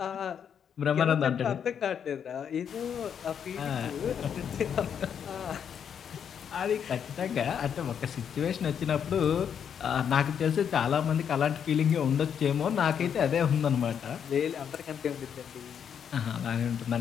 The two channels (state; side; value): quieter; right; 8.0 dB